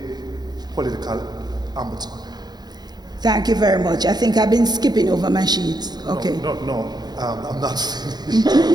political ombudsman? Thank you very much. I think I've been skipping over my sheets. Okay. No, I'm not finished.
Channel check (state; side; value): late; left; 0.20 ms